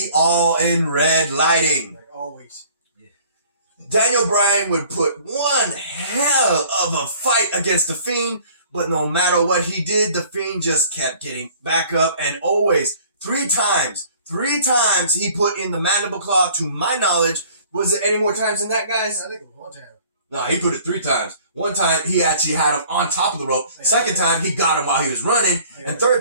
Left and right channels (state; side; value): inverted; both; correlation -0.52